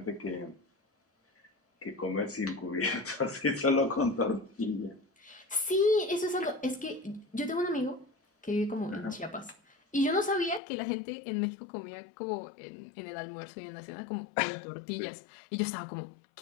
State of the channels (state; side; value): drops out; right; at 10.6 s